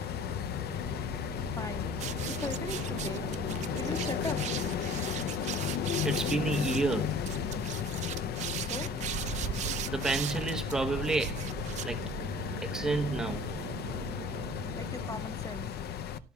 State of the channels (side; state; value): both; normal; correlation 0.46